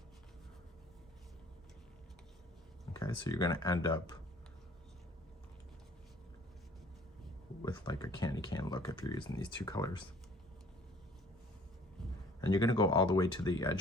Okay, so you're going to end up with like a candy cane look if you're using these 2 colors. And you're going to go all the way to the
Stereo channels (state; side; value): normal; both; correlation 0.53